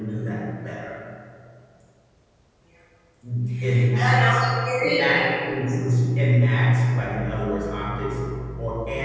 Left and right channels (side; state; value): both; identical; correlation 1.00